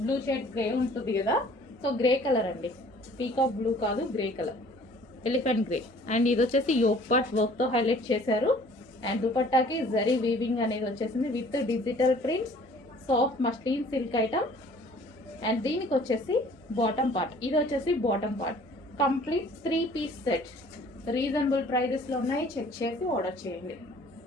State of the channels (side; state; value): both; normal; correlation 0.53